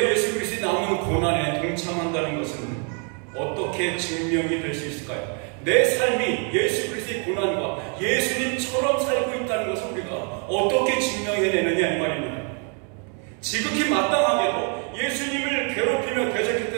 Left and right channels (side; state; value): left; quieter; 39.6 dB